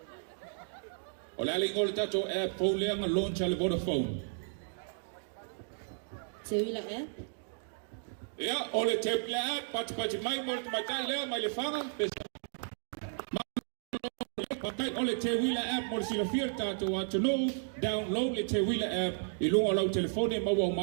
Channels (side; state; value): left; silent; digital silence